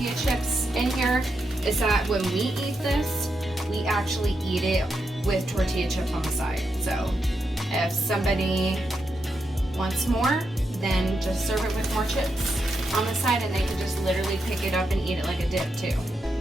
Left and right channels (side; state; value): both; normal; correlation 0.84